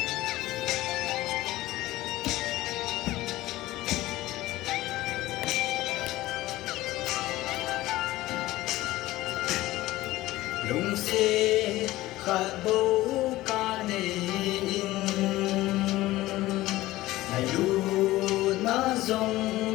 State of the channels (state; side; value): quieter; right; 17.2 dB